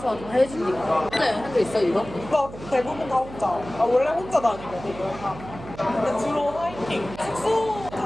다 해주니까. 혼자 여행한 적 있어 이거? 나 대부분 다 혼자. 아, 원래 혼자 다니거든. 근데 주로 하이킹. 숙소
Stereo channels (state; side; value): noise; right; hum, 14 dB below the sound